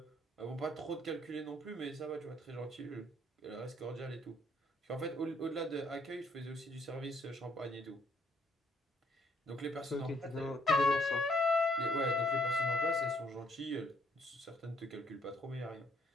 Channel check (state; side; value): normal; both; correlation 0.66